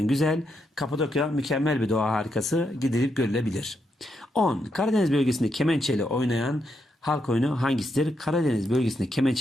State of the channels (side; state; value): both; normal; correlation 0.81